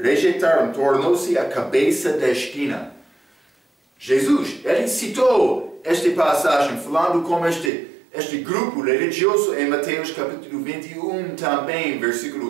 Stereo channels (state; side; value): drops out; left; at 7.7 s